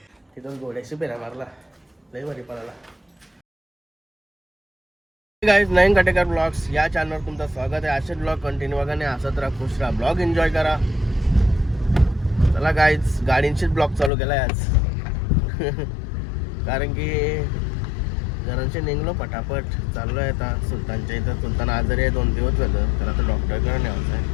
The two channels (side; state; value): right; drops out; at 14.1 s